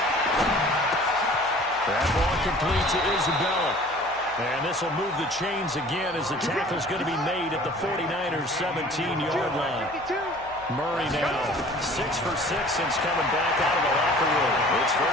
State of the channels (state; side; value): noise; right; hum, 23 dB below the sound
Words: That ball complete to Isabella. And this will move the chains again as the tackle's going to be made at the 49ers' 17-yard line. Murray now 6 for 6 since coming back out of the locker room. It's